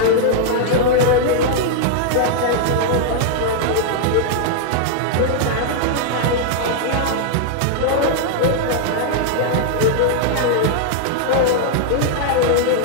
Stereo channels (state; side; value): different; both; correlation -0.01